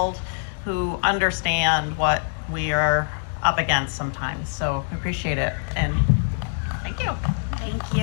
who understand what we are up against sometimes. So we appreciate it, and thank you. Thank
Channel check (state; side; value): silent; right; digital silence